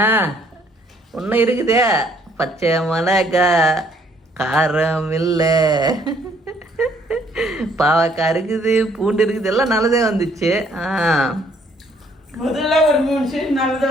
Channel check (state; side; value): normal; both; correlation 0.64